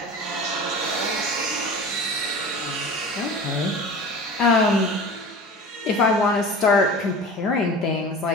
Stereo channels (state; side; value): normal; both; correlation 0.36